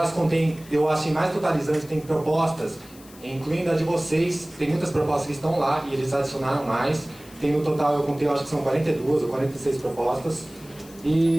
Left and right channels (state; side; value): noise; left; hiss, 22 dB below the sound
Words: contém, eu acho mais totalizante, tem propostas, incluindo a de vocês, tem muitas propostas que estão lá e eles adicionaram mais. tem no total, eu contei, eu acho que são 42 ou 46 propostas.